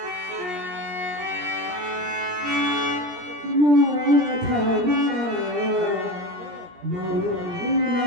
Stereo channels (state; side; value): late; left; 17 ms